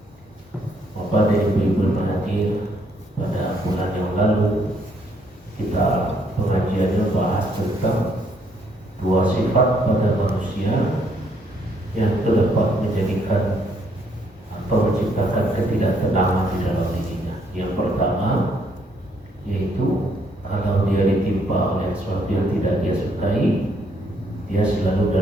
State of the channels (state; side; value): normal; both; correlation 0.70